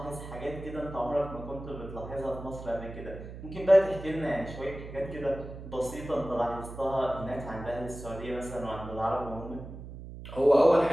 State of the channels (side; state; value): right; noise; hum, 12 dB below the sound